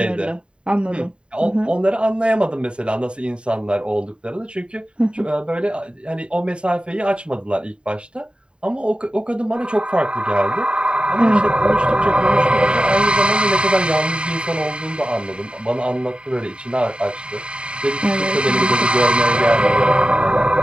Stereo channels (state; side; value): late; left; 0.052 ms